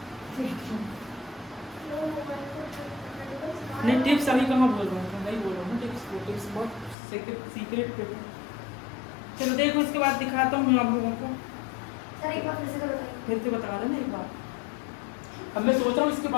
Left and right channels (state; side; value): drops out; right; at 7.0 s